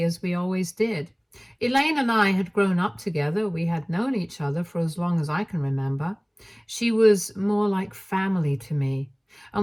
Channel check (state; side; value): identical; both; correlation 1.00